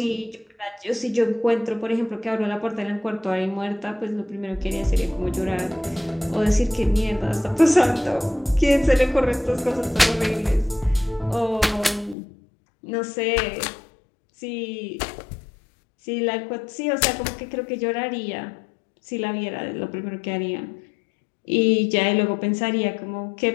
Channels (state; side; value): drops out; right; at 12.2 s